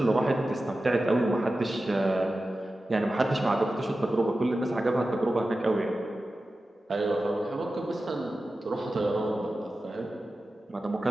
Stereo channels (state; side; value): normal; both; correlation 0.94